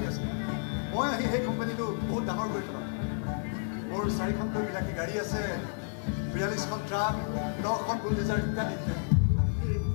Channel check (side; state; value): right; silent; digital silence